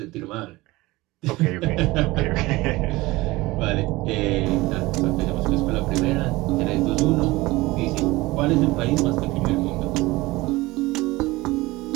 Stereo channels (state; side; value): quieter; left; 20.4 dB